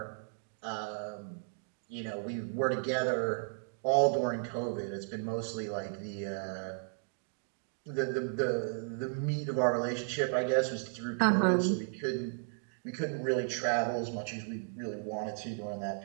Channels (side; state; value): left; silent; digital silence